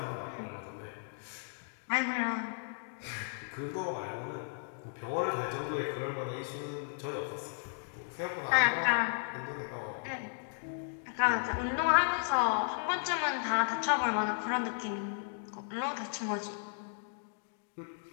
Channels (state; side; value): silent; right; digital silence